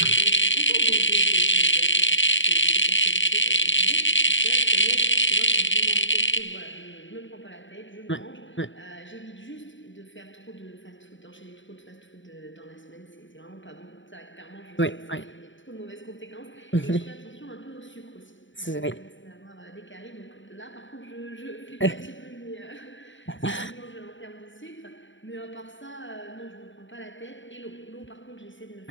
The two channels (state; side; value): late; right; 0.55 ms